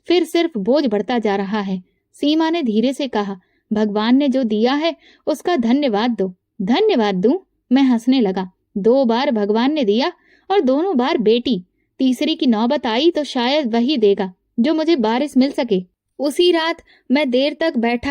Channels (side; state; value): both; identical; correlation 1.00